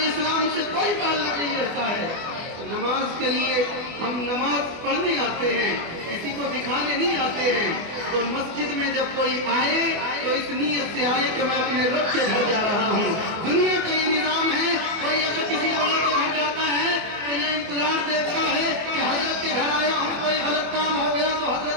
اسلام سے کوئی تعلق نہیں رہتا ہے۔ نماز کے لیے ہم نماز پڑھنے آتے ہیں، کسی کو دکھانے نہیں آتے ہیں، تو مسجد میں جب کوئی آئے تو اس نیت سے آئے کہ میں اپنے رب کے گھر جا رہا ہوں۔ دنیا کا یہ نظام ہے، کوئی اگر کسی بڑے کے گھر جاتا ہے تو یہ انتظار دیتا ہے کہ حضرت کے گھر آیا ہوں، کوئی غلط کام ہو گیا تو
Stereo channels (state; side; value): late; left; 24 ms